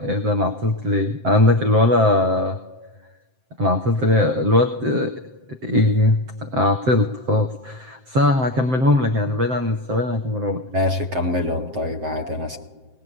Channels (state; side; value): late; left; 7.7 ms